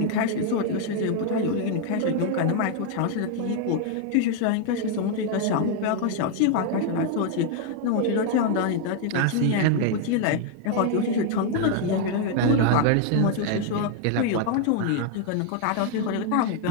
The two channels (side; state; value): both; different; correlation 0.00